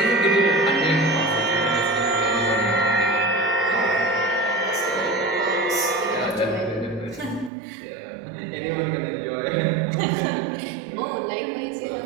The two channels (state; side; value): drops out; left; at 7.5 s